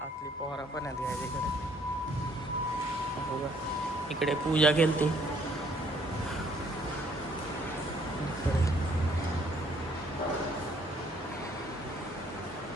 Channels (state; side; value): normal; both; correlation 0.63